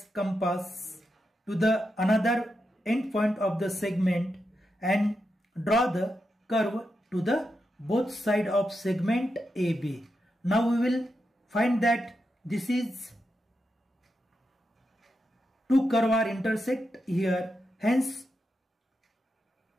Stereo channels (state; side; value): normal; both; correlation 0.87